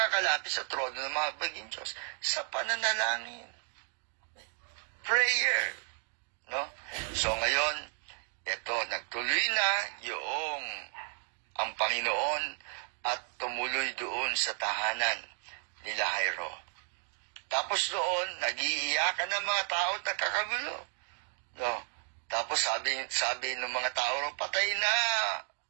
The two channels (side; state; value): left; silent; 56 dB below the other